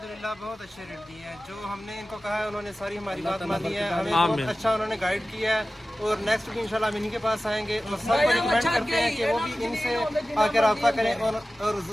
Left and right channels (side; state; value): both; normal; correlation 0.96